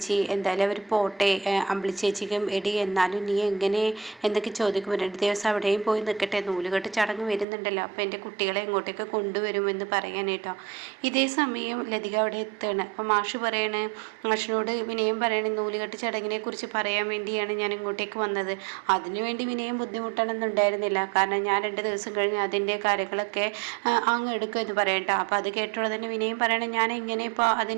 എന്തായാലും അവർ പോട്ടെ, അമ്പിളി ചേച്ചിക്കും എടി എന്നാലും നീ എങ്ങനെ എന്നൊക്കെ ചോദിക്കുമ്പോൾ 2 ദിവസം അവിടെയും പോയി നിൽക്കട്ടെ, നൂലുകെട്ട് ചടങ്ങ് വരുന്നുണ്ടല്ലോ, അപ്പോൾ എൻ്റെ കുട്ടികളെ ഇങ്ങോട്ടേക്ക് കൊണ്ടുവരുമെന്ന് പറയാനേട്ടോ. ഇതേ സമയം ലതിക അവിടെ എത്തുകയാണ്. അപ്പോൾ മാഷ് പറയണേ, മാഷിനോട് വിനയം പറയണേ, നൂലുകെട്ട് ചടങ്ങിനെ കുറിച്ച് പറയാൻ വേണ്ടിയാണ് ഞാൻ ഇങ്ങോട്ടേക്ക് വന്നത്. അതിനുവേണ്ടി വിനയം ബുദ്ധിമുട്ടണമെന്നുണ്ടായിരുന്നില്ല, കാരണം ഞാൻ 2 ദിവസം കഴിഞ്ഞ് അതിൻ്റെ കാര്യങ്ങളൊക്കെ അങ്ങ് എടുക്കുമെന്ന് പറയട്ടോ. അപ്പോൾ അത് കേട്ടോടെ തന്നെ വിനയം പറയണേ, ഞാൻ എങ്ങനെ ഇപ്പോൾ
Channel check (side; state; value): left; drops out; at 7.5 s